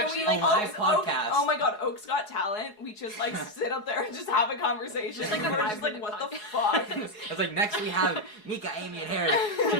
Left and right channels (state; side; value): late; right; 4.7 ms